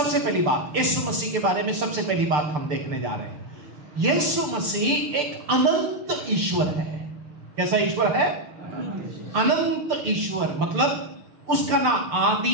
पहली बात, यीशु मसीह के बारे में सबसे पहली बात हम देखने जा रहे हैं। यीशु मसीह एक अनंत ईश्वर है। कैसा ईश्वर है? अनंत ईश्वर। मतलब उसका ना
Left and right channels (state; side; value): late; left; 6.8 ms